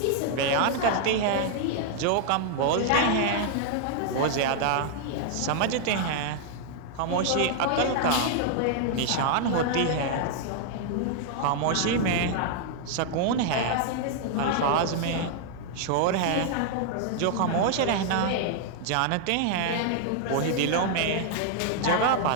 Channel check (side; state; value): both; different; correlation 0.00